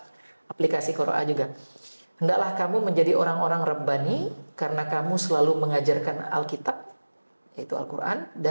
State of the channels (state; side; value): inverted; both; correlation -1.00